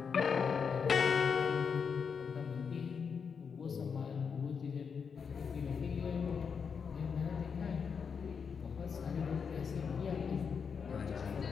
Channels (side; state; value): right; quieter; 6.2 dB